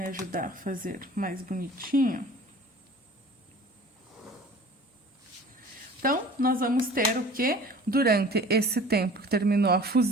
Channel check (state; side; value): normal; both; correlation 0.45